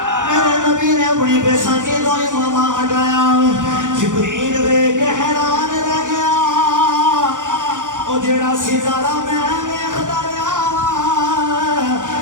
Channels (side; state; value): left; late; 0.87 ms